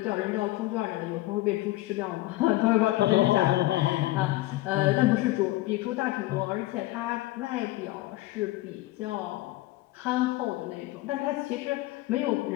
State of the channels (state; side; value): quieter; right; 17.9 dB